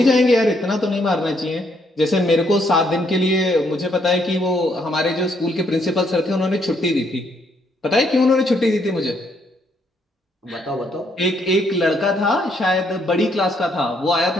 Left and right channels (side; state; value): both; normal; correlation 0.72